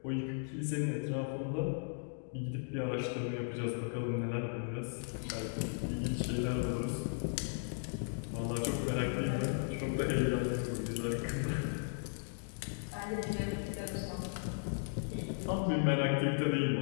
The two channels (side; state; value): right; silent; digital silence